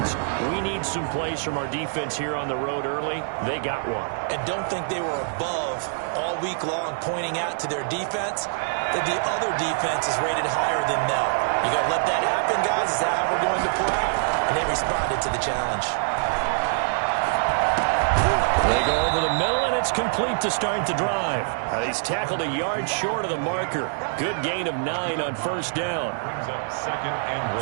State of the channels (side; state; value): left; silent; 62 dB below the other